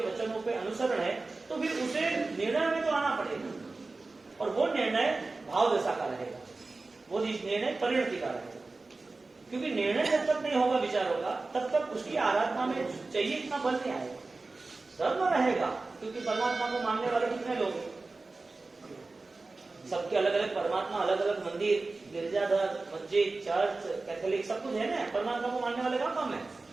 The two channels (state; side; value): quieter; left; 3.5 dB